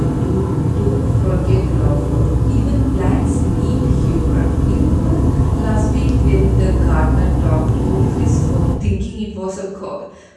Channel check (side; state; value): both; identical; correlation 1.00